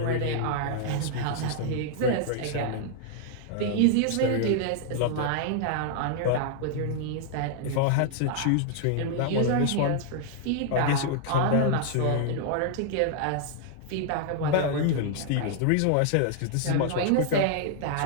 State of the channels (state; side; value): different; both; correlation -0.01